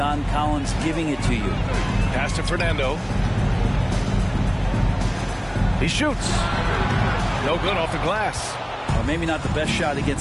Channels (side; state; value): both; identical; correlation 1.00